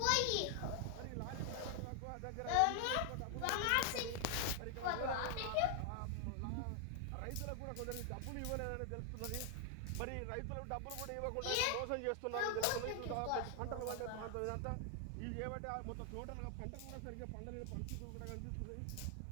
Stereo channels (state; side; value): different; both; correlation 0.00